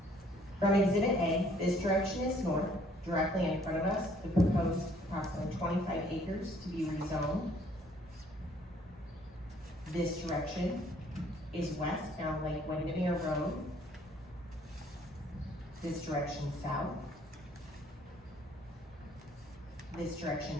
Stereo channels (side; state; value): both; normal; correlation 0.61